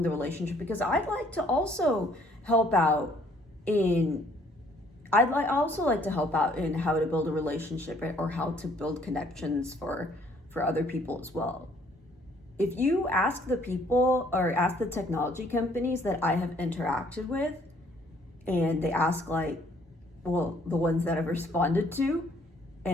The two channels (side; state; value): both; normal; correlation 0.62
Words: the relationship because I'd like to also help out in how to build a relationship or how to build connections for other people as well. If you ask the people or ask the technology companies that I have interacted with, and they ask the ones that I've responded to,